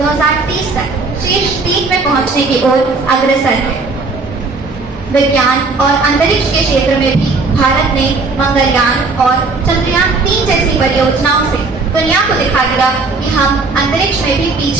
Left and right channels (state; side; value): quieter; left; 3.8 dB